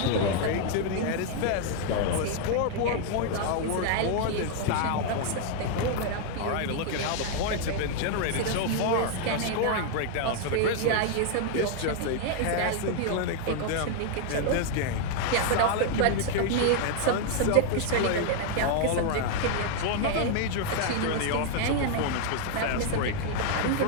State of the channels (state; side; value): different; both; correlation 0.00